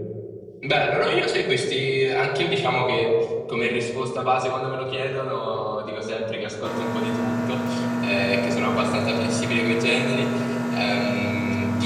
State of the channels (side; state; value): both; identical; correlation 1.00